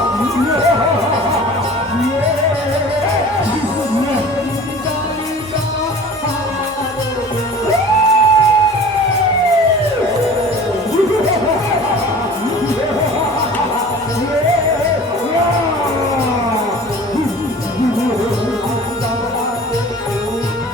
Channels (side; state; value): both; normal; correlation 0.43